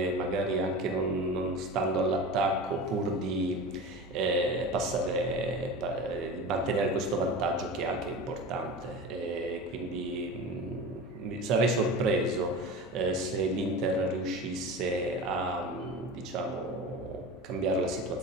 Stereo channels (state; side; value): normal; both; correlation 0.31